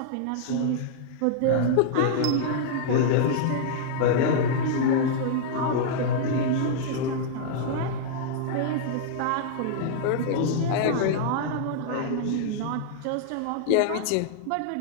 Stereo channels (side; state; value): both; different; correlation -0.01